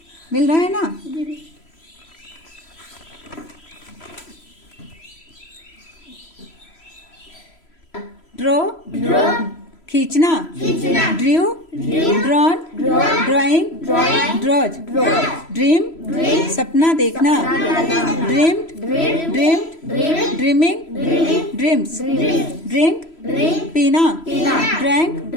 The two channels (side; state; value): right; late; 3.0 ms